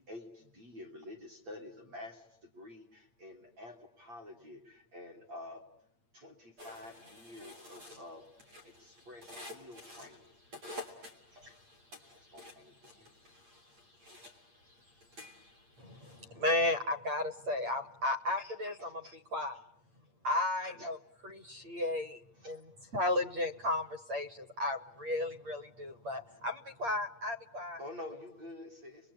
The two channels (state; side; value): late; left; 8.6 ms